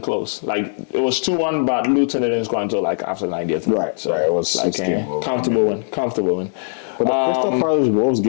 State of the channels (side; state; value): right; silent; digital silence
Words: close. Like it was 2-1, but Luton didn't score until like after 90th. Right, So right. It was like 16. comfortable win. Comfortable win. But the Crystal Palace Wolves